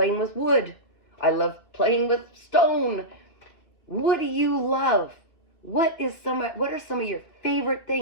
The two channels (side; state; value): right; late; 2.6 ms